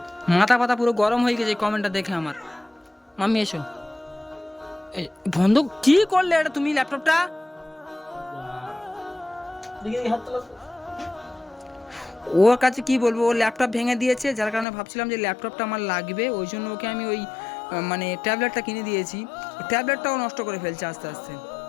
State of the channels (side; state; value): right; drops out; at 14.7 s